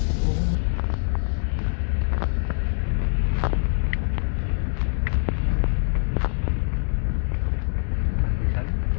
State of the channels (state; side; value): silent; right; 60 dB below the other